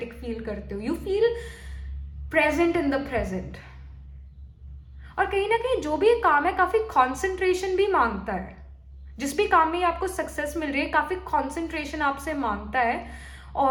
फील करते हो. You feel present in the present. और कहीं ना कहीं जो भी काम है काफी कॉन्सेंट्रेशन भी मांगता है. जिस भी काम में आपको सक्सेस मिल रही है, काफी कॉन्सेंट्रेशन आपसे मांगता है.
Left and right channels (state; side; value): identical; both; correlation 1.00